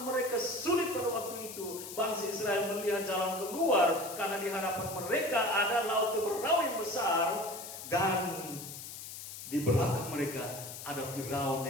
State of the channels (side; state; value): left; noise; hiss, 10 dB below the sound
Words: mereka sulit pada waktu itu, bangsa Israel melihat jalan keluar karena di hadapan mereka ada laut Teberau yang besar dan di belakang mereka ada Firaun